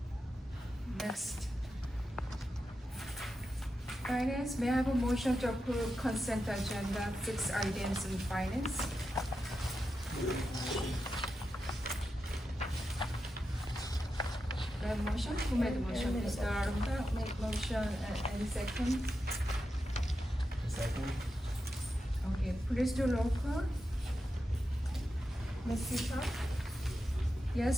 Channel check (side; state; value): both; normal; correlation 0.88